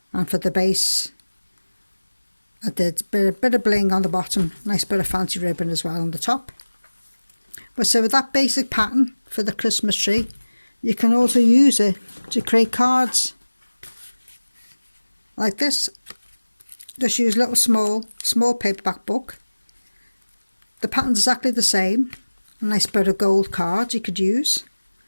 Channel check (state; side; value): inverted; both; correlation -1.00